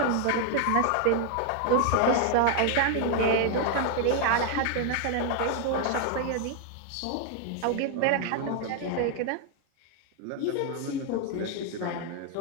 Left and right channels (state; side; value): different; both; correlation 0.00